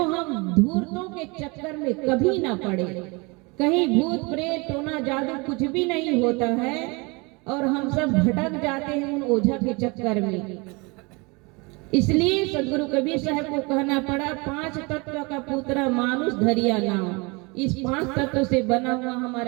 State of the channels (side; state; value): left; quieter; 27.9 dB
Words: हम धूर्तों के चक्कर में कभी ना पड़े। कहीं भूत प्रेत टोना जादू कुछ भी नहीं होता है और हम सब भटक जाते हैं उन ओझा के चक्कर में। इसलिए सदगुरु कबीर साहब को कहना पड़ा, 5 तत्व का पुत्र मानुष धरिया नाम। इस 5 तत्व से बना हुआ